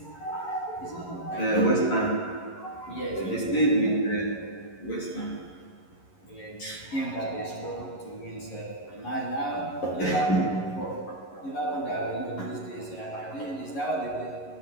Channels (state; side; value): late; right; 11 ms